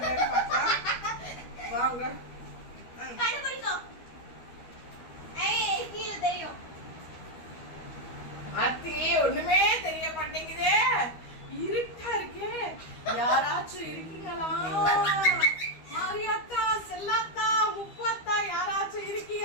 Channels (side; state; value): right; late; 12 ms